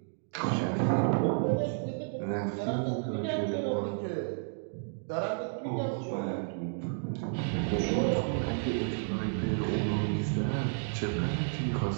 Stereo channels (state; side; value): silent; left; digital silence